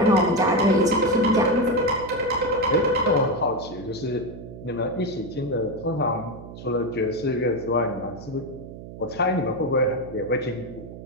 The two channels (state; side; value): noise; right; hum, 13 dB below the sound